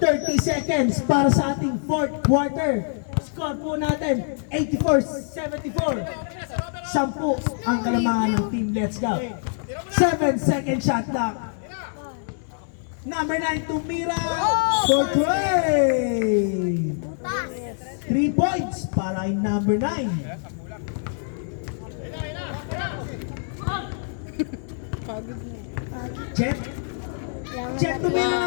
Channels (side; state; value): right; silent; digital silence